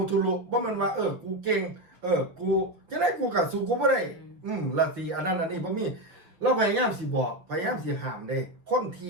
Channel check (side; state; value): left; late; 5.9 ms